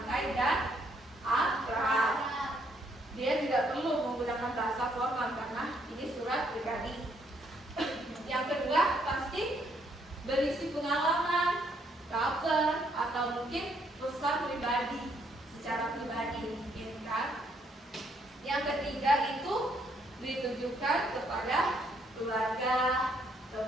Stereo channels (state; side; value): normal; both; correlation 0.70